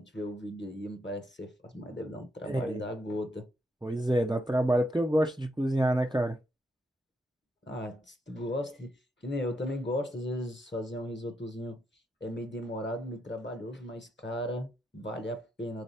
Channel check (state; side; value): normal; both; correlation 0.80